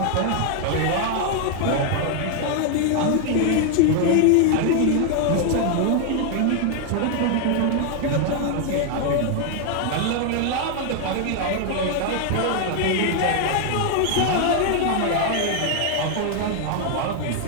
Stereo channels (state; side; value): different; both; correlation 0.00